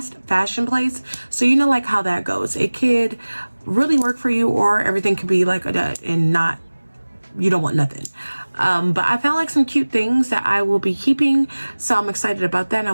place. So you know like how that goes. It could really work for you, or everything could be like a dud and not, you don't want nothing. But I found like some cute things that I will be keeping, so I'm excited about that, and I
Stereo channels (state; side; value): inverted; both; correlation -1.00